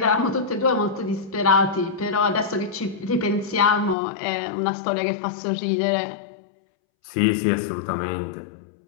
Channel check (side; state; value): right; drops out; at 4.0 s